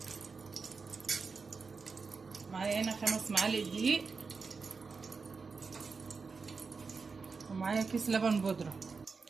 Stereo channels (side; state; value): left; quieter; 4.8 dB